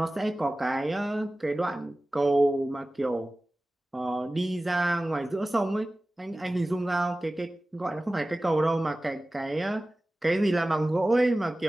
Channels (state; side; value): normal; both; correlation 0.97